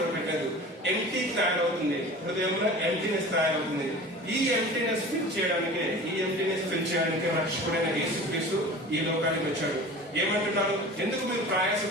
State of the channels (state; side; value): normal; both; correlation 0.38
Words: ఎంప్టీ తయారవుతుంది, హృదయంలో ఎంప్టీనెస్ తయారవుతుంది. ఈ ఎంప్టీనెస్ ఫిల్ చేయడానికి రక్షకుడైన యేసుక్రీస్తు ఈ లోకానికి వచ్చాడు. ఏమంటున్నారు? ఎందుకు మీరు